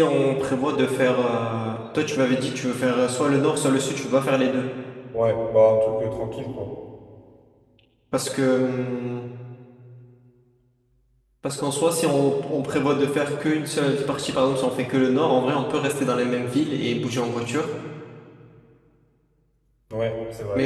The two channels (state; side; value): identical; both; correlation 1.00